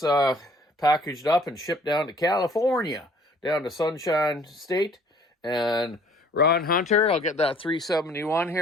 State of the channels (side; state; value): both; normal; correlation 0.57